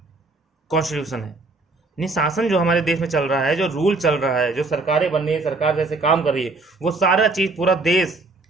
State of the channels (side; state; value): left; quieter; 3.5 dB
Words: कॉन्स्टिट्यूशन है। यानी शासन जो हमारे देश में चल रहा है, जो रूल चल रहा है, जो सरकारें बन रही है, सरकार जैसे काम कर रही है, वो सारा चीज, पूरा देश